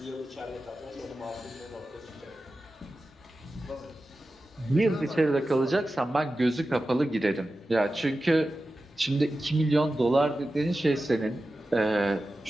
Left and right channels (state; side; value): normal; both; correlation 0.93